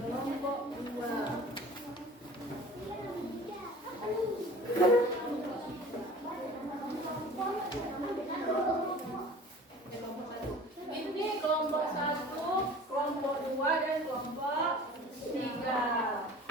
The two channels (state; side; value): normal; both; correlation 0.43